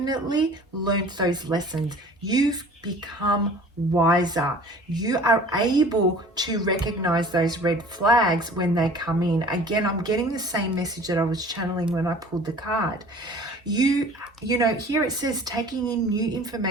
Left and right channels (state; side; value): normal; both; correlation 0.46